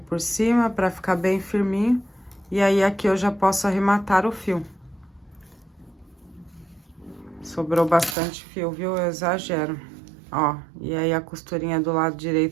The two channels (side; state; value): left; drops out; at 8.2 s